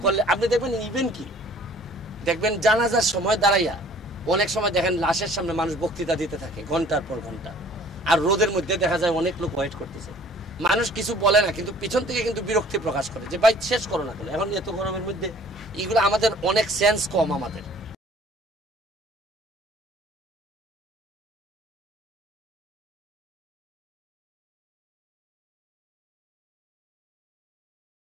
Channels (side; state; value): both; normal; correlation 0.53